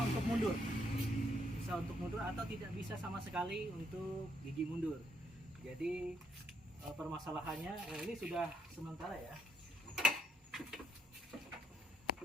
untuk mundur atau tidak bisa sama sekali untuk gigi mundur. Jadi permasalahannya ini sudah sementara ya.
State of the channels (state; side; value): normal; both; correlation 0.74